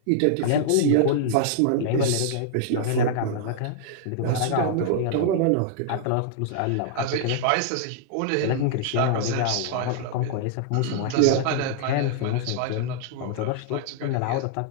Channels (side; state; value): both; different; correlation -0.01